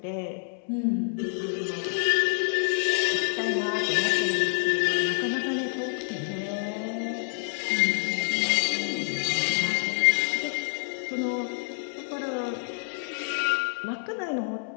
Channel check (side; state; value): right; silent; digital silence